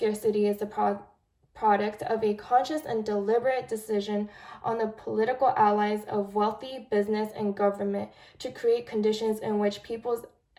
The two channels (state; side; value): identical; both; correlation 1.00